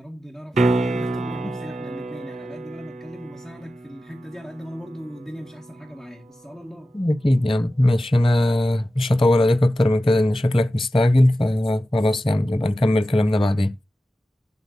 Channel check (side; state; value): both; normal; correlation 0.93